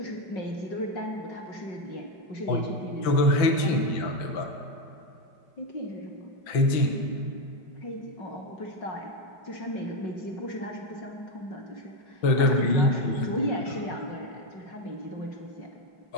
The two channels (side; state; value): right; late; 5.9 ms